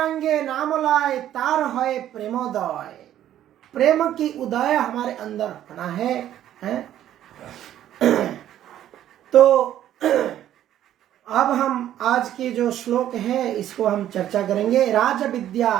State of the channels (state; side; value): quieter; left; 11.7 dB